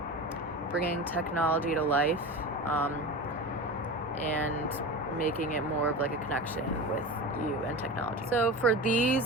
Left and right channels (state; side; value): normal; both; correlation 0.28